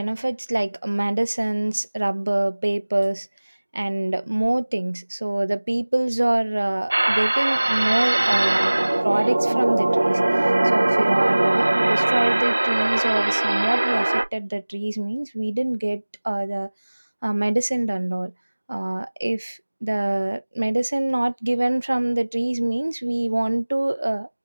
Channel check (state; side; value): inverted; both; correlation -1.00